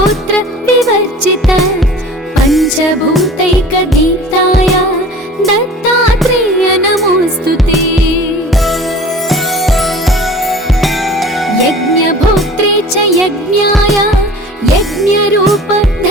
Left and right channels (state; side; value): normal; both; correlation 0.43